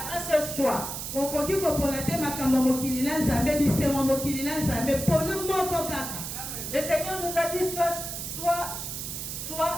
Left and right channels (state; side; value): noise; right; hiss, 6 dB below the sound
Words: un seul choix. Okoki kopona te makambo ya mokili na nzambe bisengo mokili na nzambe pona moko kaka. Le Seigneur nous a dit soit